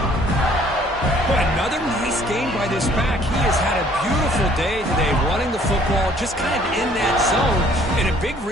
Boy, another nice game by this back. He has had a beautiful day today running the football, just kind of in that zone, and a big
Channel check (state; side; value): normal; both; correlation 0.59